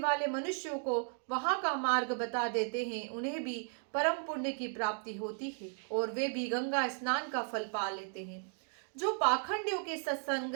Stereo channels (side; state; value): left; silent; 54 dB below the other